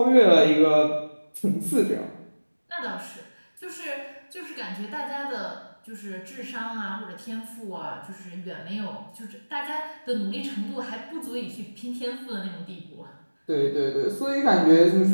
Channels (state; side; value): inverted; both; correlation -1.00